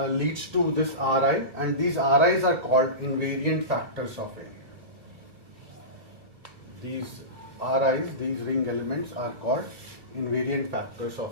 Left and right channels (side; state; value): left; late; 2.5 ms